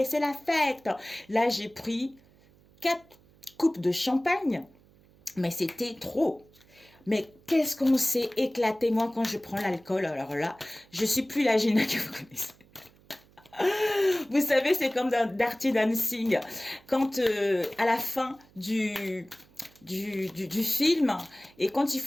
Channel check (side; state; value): right; noise; hum, 29 dB below the sound